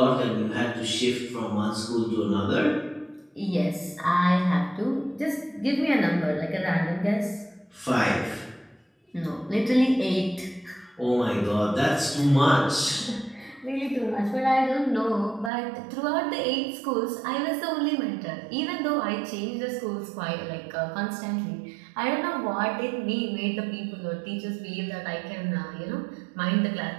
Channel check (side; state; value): left; drops out; at 15.5 s